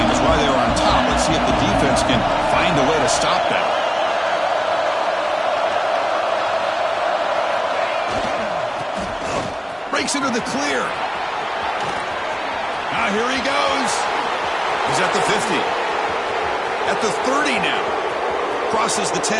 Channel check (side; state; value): both; identical; correlation 1.00